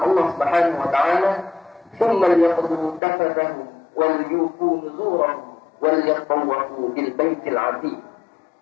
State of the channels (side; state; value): right; drops out; at 3.0 s